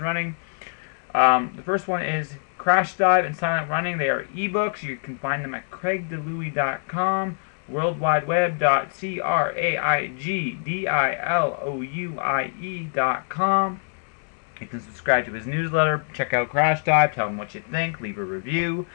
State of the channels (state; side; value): silent; right; digital silence